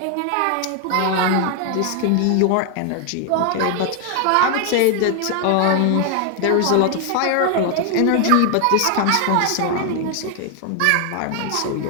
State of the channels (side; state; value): both; different; correlation 0.00